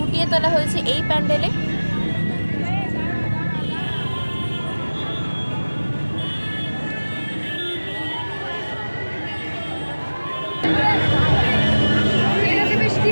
তোলা হয়েছে এই প্যান্ডেলে।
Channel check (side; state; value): both; inverted; correlation -1.00